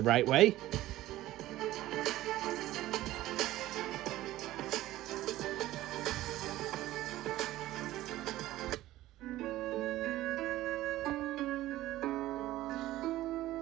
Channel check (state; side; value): quieter; left; 15.6 dB